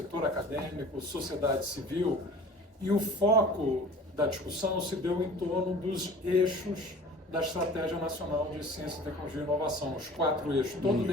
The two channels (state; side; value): normal; both; correlation 0.44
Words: acadêmico, sociedade civil, e o foco da discussão se deu em torno dos eixos da Estratégia Nacional de Ciência, Tecnologia e Inovação, os 4 eixos. Todo o